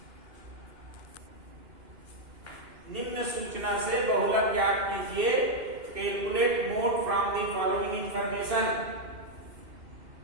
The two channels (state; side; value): late; left; 2.6 ms